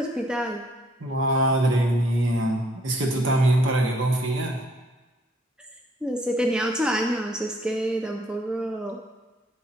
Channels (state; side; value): normal; both; correlation 0.66